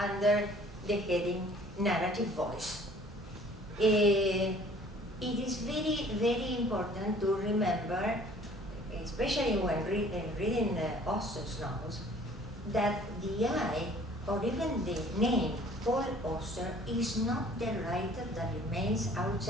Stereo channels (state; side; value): normal; both; correlation 0.53